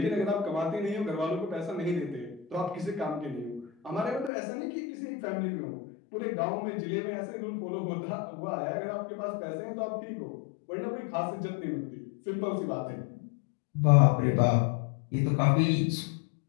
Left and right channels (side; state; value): right; drops out; at 4.3 s